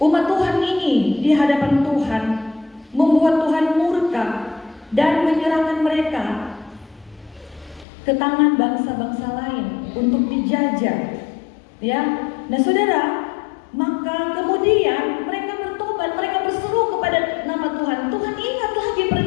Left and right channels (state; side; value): drops out; right; at 7.9 s